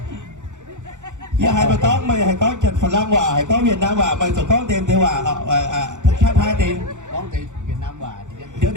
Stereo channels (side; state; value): left; late; 0.85 ms